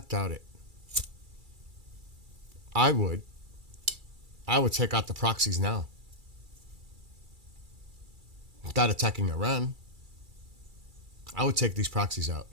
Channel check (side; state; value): left; late; 2.3 ms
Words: doubt it. I would take out the proxies now. Without attacking Iran. I would take these proxies out